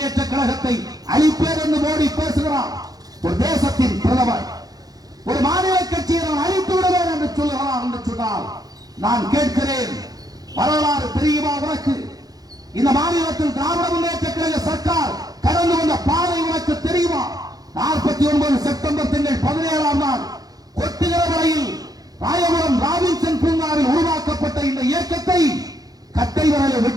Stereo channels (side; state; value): left; late; 0.18 ms